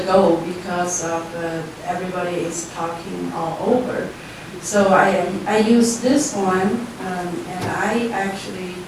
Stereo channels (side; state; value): both; identical; correlation 1.00